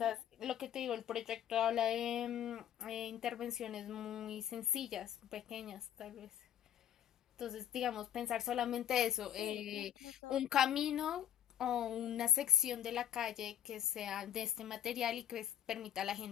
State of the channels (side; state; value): right; quieter; 10.4 dB